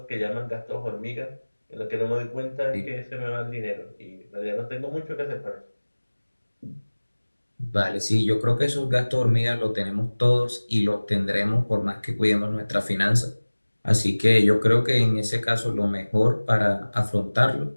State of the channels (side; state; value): both; inverted; correlation -1.00